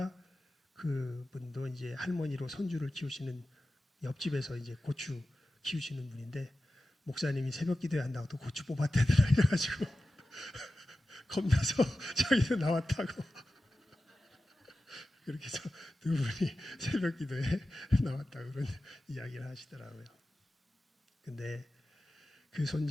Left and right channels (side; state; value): both; normal; correlation 0.94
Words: 그분도 이제 할머니로 손주를 키우시는 옆집에서 이제 고추 키우시는 분인데 목사님이 새벽 기도에 한다고 또 고추 뽑았대더라 이래가지고 겁나서 자기도 나왔다고 그렇게 해서 두 분이 새벽 기도에 나왔다고 그런 이야기를 하시더라고요. 근데 그